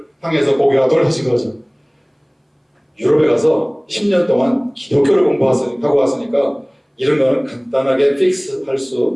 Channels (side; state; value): both; identical; correlation 1.00